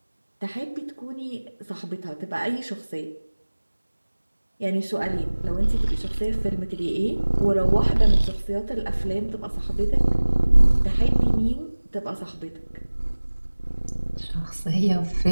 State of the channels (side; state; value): both; inverted; correlation -1.00